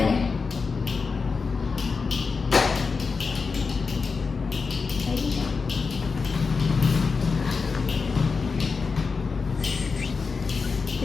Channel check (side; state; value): right; quieter; 4.8 dB